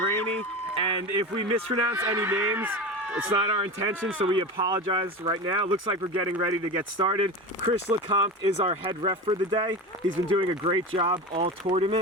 rainy. And if we mispronounce any names, it's not our intention, so we apologize right now. Looks like we're getting ready to get started. Chris LeCompte is our head ref for the day. He's been doing a great job all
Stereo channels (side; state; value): both; normal; correlation 0.26